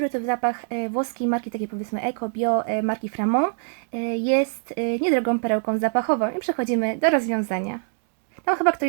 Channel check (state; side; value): silent; left; digital silence